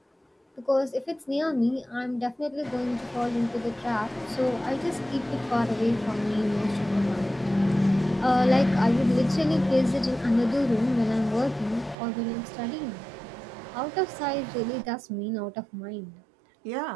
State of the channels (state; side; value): drops out; left; at 12.0 s